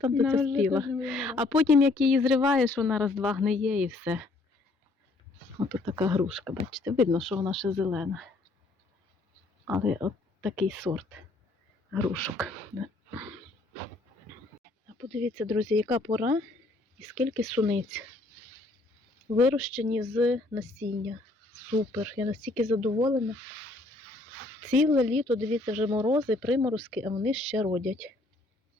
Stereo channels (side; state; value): right; quieter; 3.1 dB